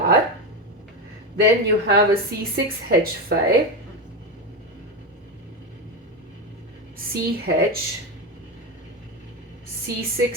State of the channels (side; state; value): both; normal; correlation 0.14